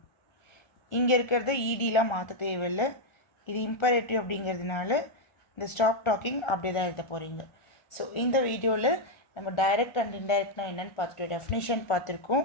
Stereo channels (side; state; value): right; late; 1.3 ms